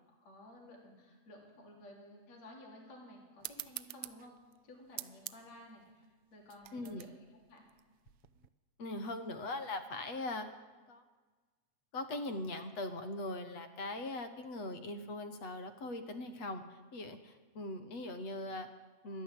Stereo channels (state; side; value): late; right; 7.3 ms